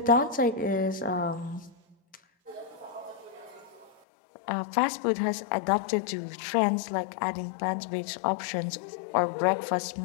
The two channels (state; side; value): drops out; right; at 4.0 s